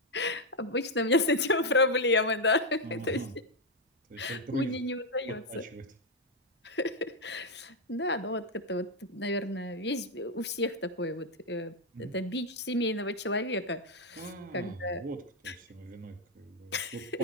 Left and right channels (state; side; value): normal; both; correlation 0.02